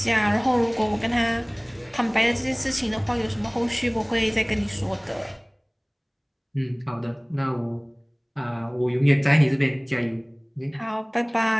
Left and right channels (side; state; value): both; identical; correlation 1.00